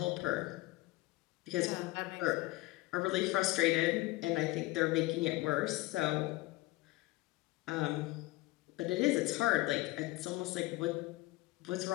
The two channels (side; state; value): right; quieter; 20.2 dB